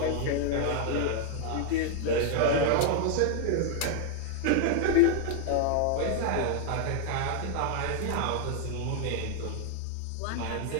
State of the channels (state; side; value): different; both; correlation 0.00